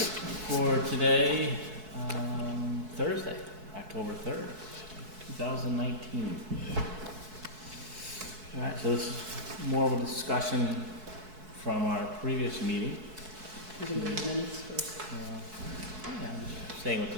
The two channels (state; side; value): late; left; 4.6 ms